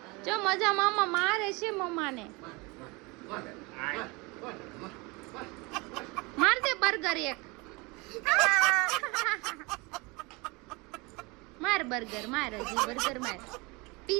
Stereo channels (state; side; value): quieter; left; 26.2 dB